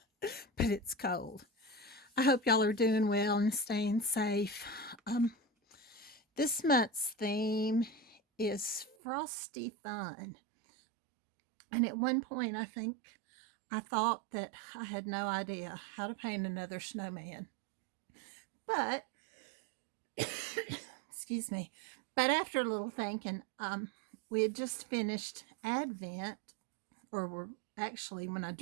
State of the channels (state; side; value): drops out; left; at 9.0 s